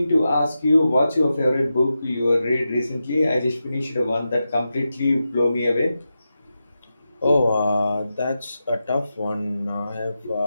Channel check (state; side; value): inverted; both; correlation -0.90